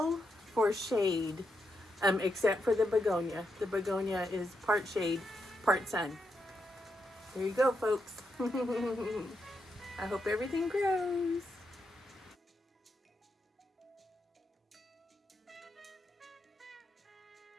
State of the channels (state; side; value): normal; both; correlation 0.83